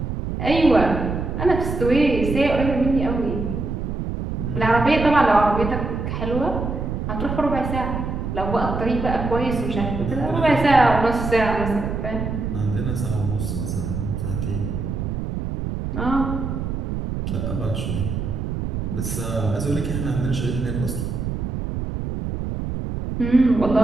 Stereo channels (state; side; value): noise; right; rumble, 3 dB below the sound